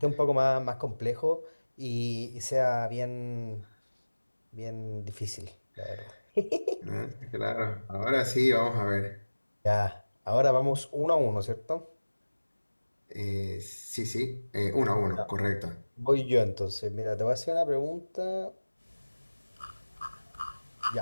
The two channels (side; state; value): both; inverted; correlation -1.00